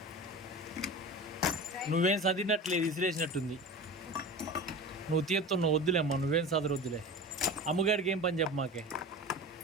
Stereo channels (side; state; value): both; normal; correlation 0.32